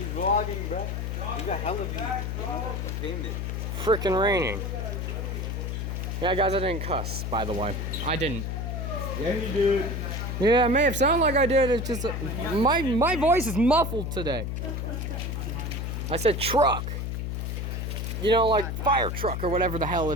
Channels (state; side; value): noise; left; hum, 3 dB below the sound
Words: vlogging, bro. He got hella views. You know? He's famous. Freaking raining. Yeah, guys, I didn't cuss, by the way. I didn't. Yeah, you did. Yeah, it may have sounded like I did. It's just my voice is muffled today. I said truck. You know, like fire truck or whatever the hell